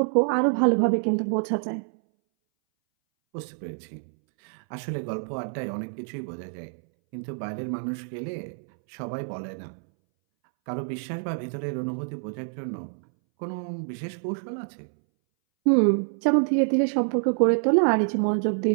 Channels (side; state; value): left; silent; 61 dB below the other